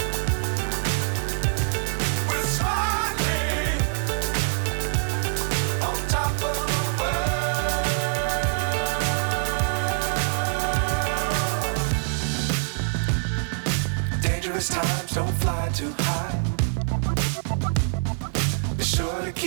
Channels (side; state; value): left; silent; 62 dB below the other